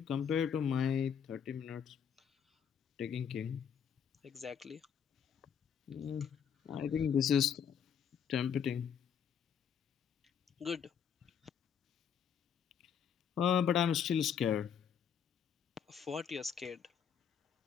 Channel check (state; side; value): quieter; right; 7.9 dB